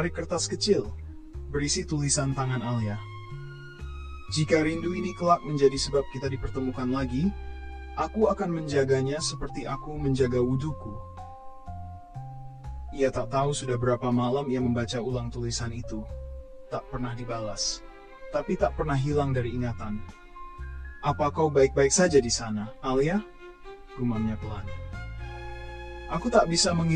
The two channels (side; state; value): both; identical; correlation 1.00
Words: kertas kecil, berisi tulisan tangan Alia. Jika rindu ini kelak menjadi sebab kita dipertemukan lagi, aku akan menjaganya seperti aku menjaga wuduku. Ia tak tahu sudah berapa malam ia membaca ulang tulisan itu. Tak pernah dibalas, tapi tak pernah hilang dari ingatan. Apa kau baik-baik saja di sana, Alia? Gumamnya pelan. Aku tak bisa